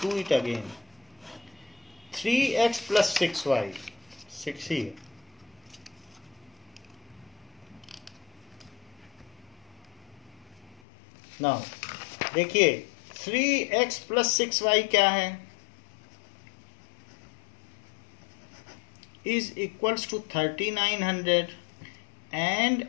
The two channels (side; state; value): right; drops out; at 10.8 s